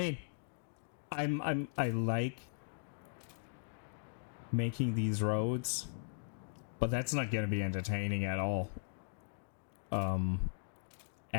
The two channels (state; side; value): silent; right; digital silence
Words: I like making these roads, but that's not gonna be entertaining at all.